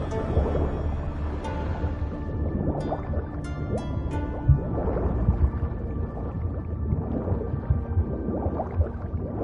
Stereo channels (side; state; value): both; identical; correlation 1.00